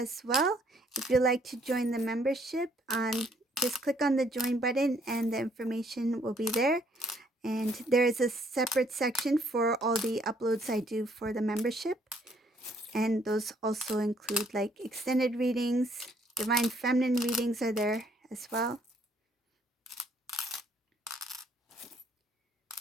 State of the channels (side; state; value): both; normal; correlation 0.66